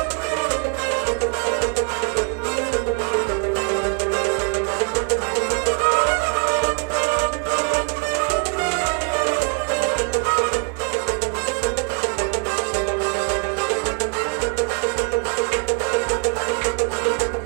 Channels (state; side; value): quieter; left; 34.8 dB